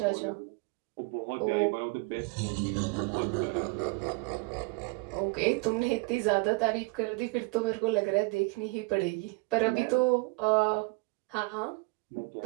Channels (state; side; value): quieter; left; 27.6 dB